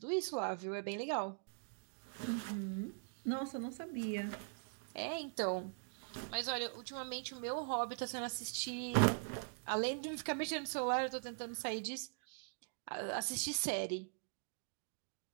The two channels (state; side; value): silent; left; digital silence